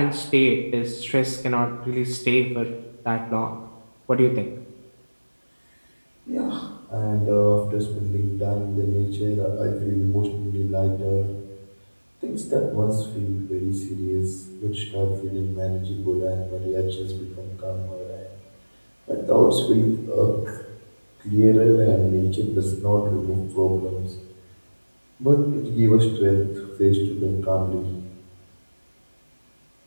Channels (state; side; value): inverted; both; correlation -1.00